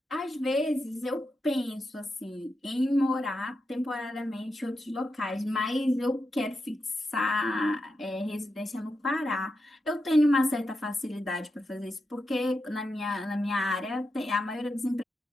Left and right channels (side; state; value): both; normal; correlation 0.87